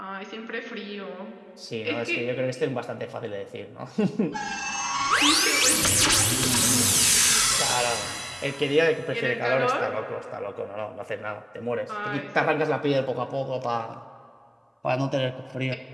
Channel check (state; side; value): identical; both; correlation 1.00